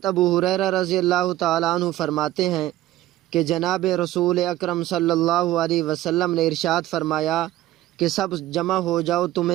ابو ہریرہ رضی اللہ تعالی عنہ فرماتے ہیں کہ جناب رسول اکرم صلی اللہ علیہ وسلم نے ارشاد فرمایا کہ سب جمع ہو جاؤ،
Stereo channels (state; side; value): quieter; left; 14.9 dB